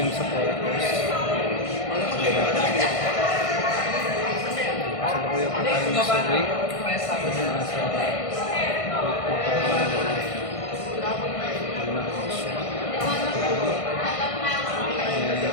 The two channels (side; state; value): right; late; 1.5 ms